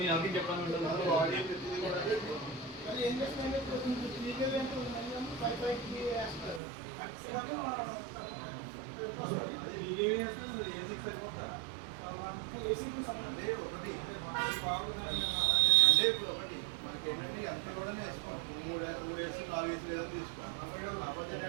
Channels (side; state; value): left; drops out; at 6.6 s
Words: అంటే ఇప్పుడు ఒకటి మనకి ఏంటంటే ఎంతలోనే వేసుకోండి. 3 వేసు 4 వేసు లేదని తీసుకోండి. కాకపోతే